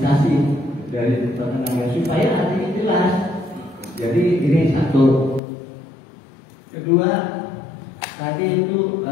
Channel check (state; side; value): drops out; right; at 5.4 s